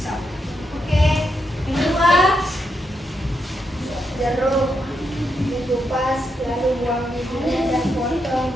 Oke, yang kedua. Jeruk dikupas, lalu buang bijinya dan potong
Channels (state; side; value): normal; both; correlation 0.82